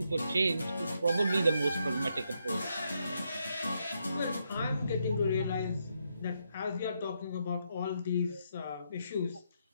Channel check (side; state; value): both; inverted; correlation -0.79